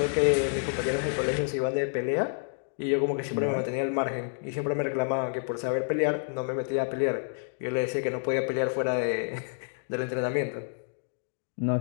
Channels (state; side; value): silent; right; digital silence